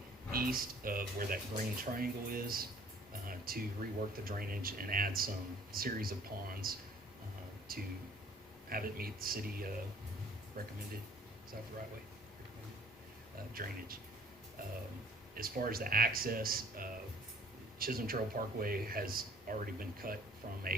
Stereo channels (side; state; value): both; normal; correlation 0.54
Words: east of where that green triangle is to rework the drainage and add some series of ponds to have it meet the city recommended, is that the right way? Drainage. As far as the access, Chisholm Trail Parkway has already been cut from